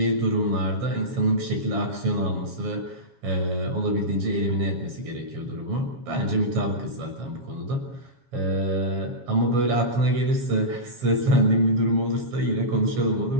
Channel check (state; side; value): late; left; 7.3 ms